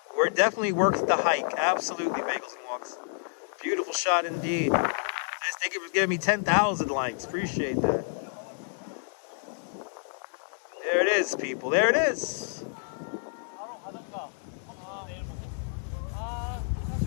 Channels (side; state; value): right; silent; digital silence